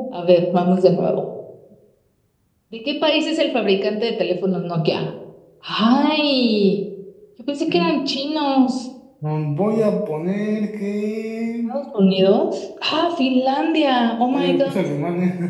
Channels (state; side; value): identical; both; correlation 1.00